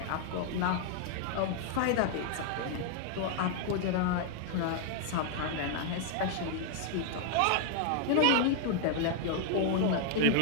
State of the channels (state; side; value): different; both; correlation 0.00